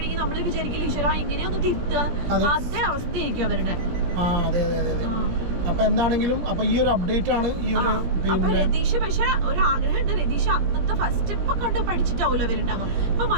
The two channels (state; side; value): late; left; 17 ms